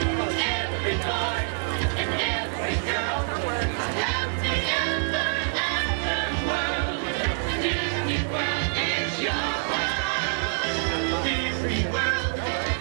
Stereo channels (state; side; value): silent; left; digital silence